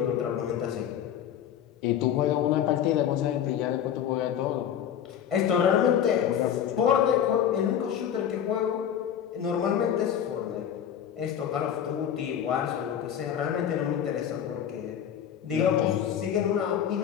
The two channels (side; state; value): right; quieter; 9.5 dB